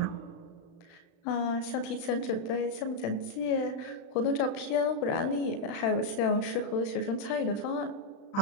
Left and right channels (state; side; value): late; right; 35 ms